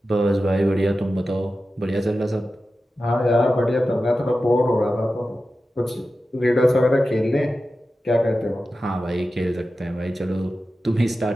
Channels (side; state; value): both; normal; correlation 0.93